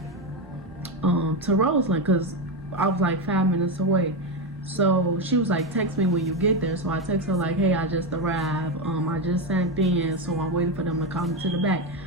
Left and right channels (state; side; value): normal; both; correlation 0.11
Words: to Roseland because I was like 5 minutes away. So she was like, text me when you get there. So I text her like, hey, I just arrived. I just sent in, so I'm waiting for them to call me to the back.